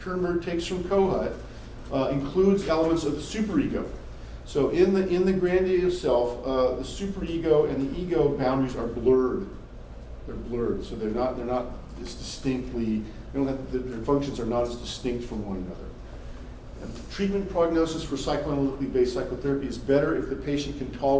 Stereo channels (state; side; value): identical; both; correlation 1.00